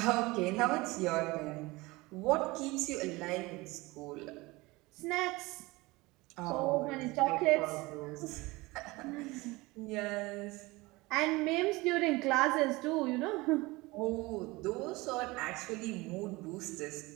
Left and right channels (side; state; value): left; quieter; 22.2 dB